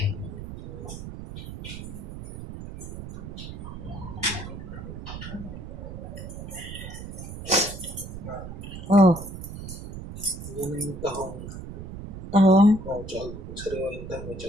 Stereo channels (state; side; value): noise; right; rumble, 9 dB below the sound